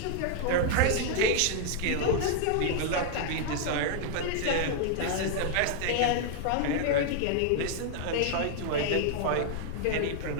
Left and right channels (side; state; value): both; different; correlation 0.00